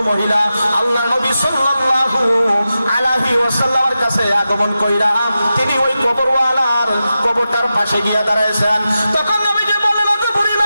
মহিলা আল্লাহর নবী সাল্লাল্লাহু আলাইহি ওয়াসাল্লামের কাছে আগমন কইরা তিনি ওই কবরওয়ালার কবরটার পাশে গিয়া দাঁড়াইছেন। তখন নবীজি বললেন, ওগো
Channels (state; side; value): inverted; both; correlation -0.91